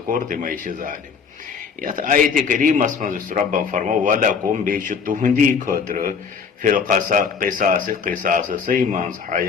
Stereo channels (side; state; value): right; quieter; 5.9 dB